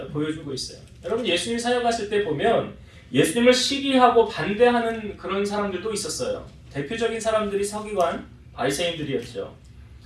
보여주고 있어요. 여러분 예수님 사역하실 때 보면 예수님을 시기하고 반대하는 그런 사람들도 있었어요. 대표적인 사람들이 서기관, 바리새인들이었죠.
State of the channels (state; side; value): identical; both; correlation 1.00